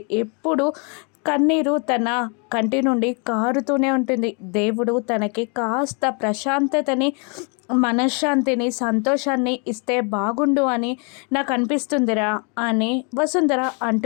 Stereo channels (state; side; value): quieter; right; 36.0 dB